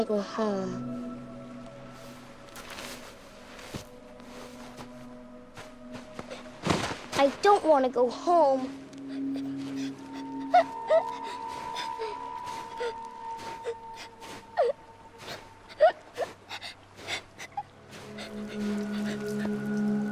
go home. I don't want to go home.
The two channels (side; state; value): both; identical; correlation 1.00